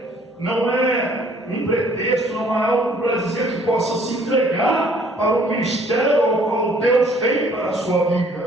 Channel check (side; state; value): both; normal; correlation 0.59